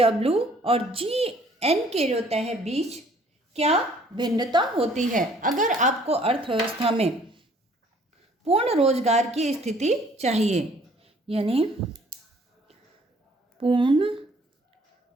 और GN के होता है बीच क्या भिन्नता होती है? अगर आपको अर्थव्यवस्था में पूर्ण रोजगार की स्थिति चाहिए, यानी पूर्ण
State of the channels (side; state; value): both; normal; correlation 0.58